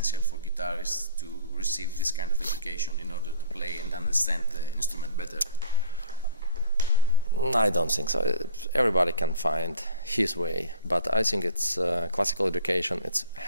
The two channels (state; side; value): inverted; both; correlation -0.46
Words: for guitarists to receive this kind of education in order to play and understand the instrument better? I don't think so. Everybody can find his way, but I think it's classical education. It